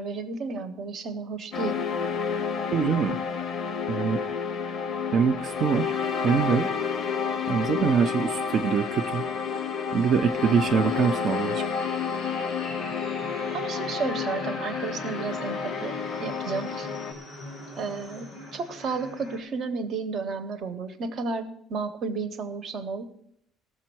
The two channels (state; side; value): normal; both; correlation 0.57